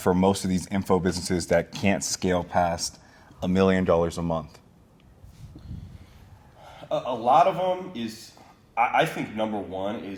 most of these info businesses that can't scale past $1 million a month? A lot of them is, I think number one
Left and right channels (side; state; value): both; identical; correlation 1.00